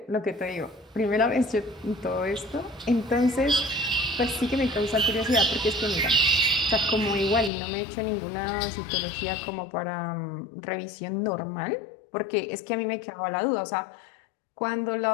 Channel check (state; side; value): drops out; right; at 7.5 s